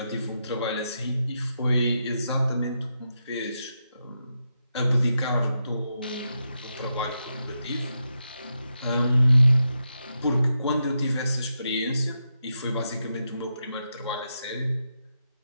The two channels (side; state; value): both; inverted; correlation -0.85